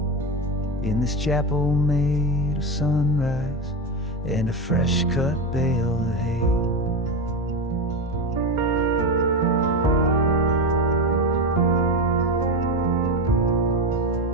in this chapel made of sunrise and a fresh cut bale of hay.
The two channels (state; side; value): normal; both; correlation 0.16